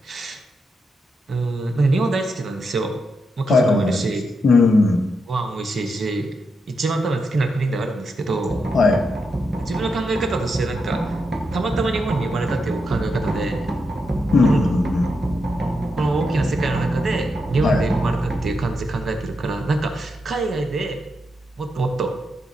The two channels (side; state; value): both; normal; correlation 0.84